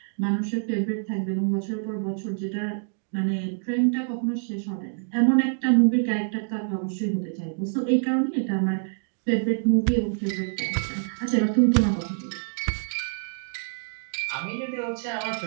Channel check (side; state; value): left; silent; digital silence